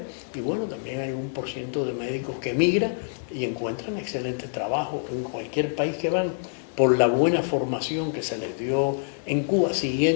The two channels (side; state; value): right; silent; digital silence